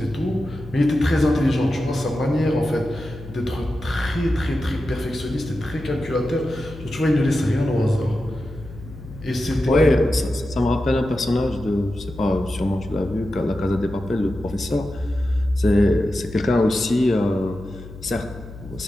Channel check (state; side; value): noise; left; hum, 15 dB below the sound